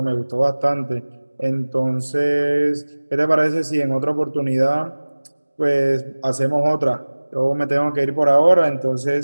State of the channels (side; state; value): both; inverted; correlation -1.00